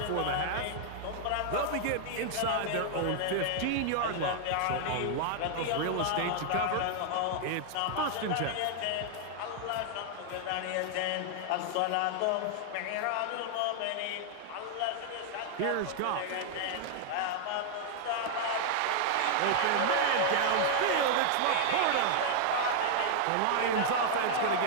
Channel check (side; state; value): both; different; correlation 0.00